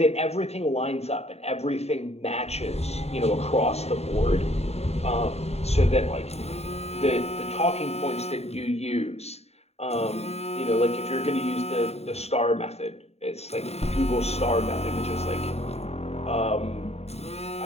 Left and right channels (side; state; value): right; late; 0.30 ms